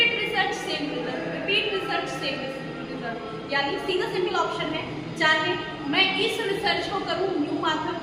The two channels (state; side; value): identical; both; correlation 1.00